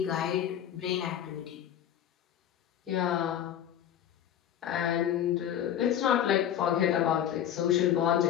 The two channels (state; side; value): quieter; right; 10.3 dB